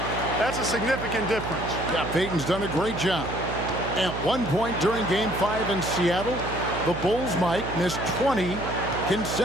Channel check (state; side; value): noise; right; hum, 7 dB below the sound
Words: That's a significant difference. Yeah, Payton's done a great job. At one point during Game 5 in Seattle, the Bulls, Mike, missed 20